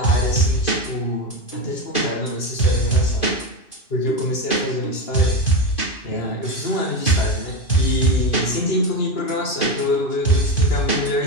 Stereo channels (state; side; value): late; right; 2.5 ms